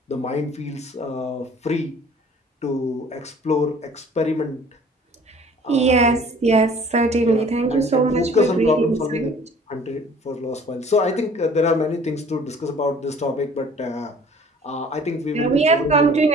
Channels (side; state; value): both; normal; correlation 0.51